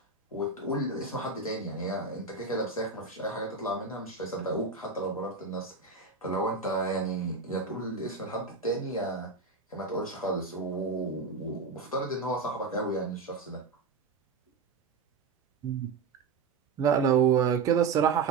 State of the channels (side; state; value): left; quieter; 4.6 dB